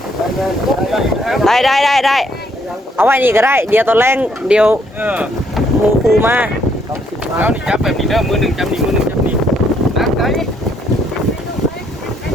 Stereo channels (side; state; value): both; normal; correlation 0.70